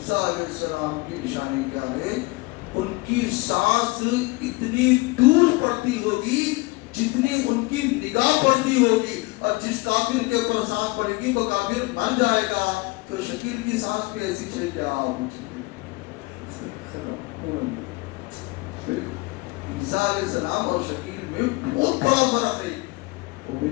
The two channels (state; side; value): quieter; right; 24.1 dB